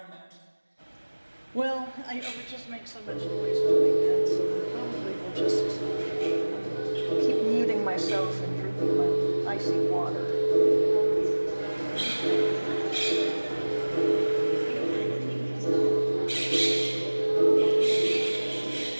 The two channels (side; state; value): both; inverted; correlation -1.00